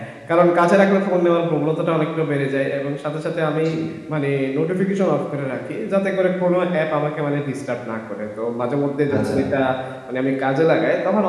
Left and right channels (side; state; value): both; identical; correlation 1.00